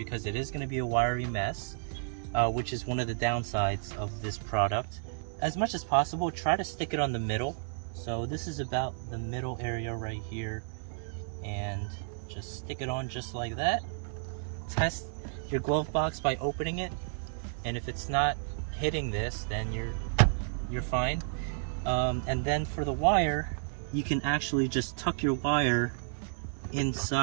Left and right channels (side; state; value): left; silent; 57 dB below the other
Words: it is going to be a wiry mess, which is one of the downsides of this product. As much as possible, try to stick it on the middle. So this is about the middle area right here, and just stick it on just like that. Test your glove box by opening it, and if it's not hitting this, then you're fine. And then for the wire, you can actually just tuck your wire